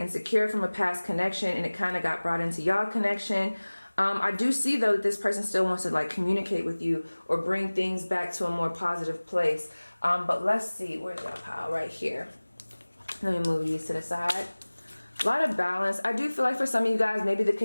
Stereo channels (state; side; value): inverted; both; correlation -1.00